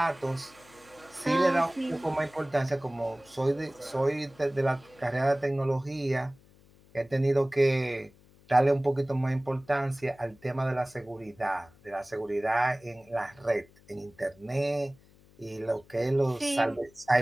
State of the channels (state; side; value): noise; left; hum, 27 dB below the sound